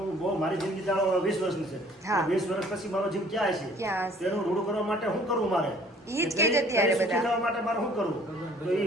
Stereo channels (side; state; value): both; normal; correlation 0.55